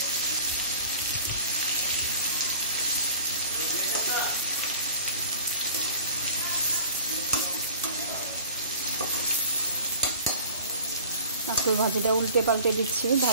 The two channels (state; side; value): inverted; both; correlation -0.45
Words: কাঁকরোল ভাজিটা উল্টে পাল্টে দিচ্ছি